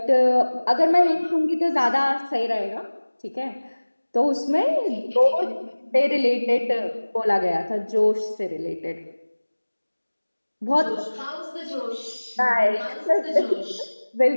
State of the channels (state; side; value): inverted; both; correlation -1.00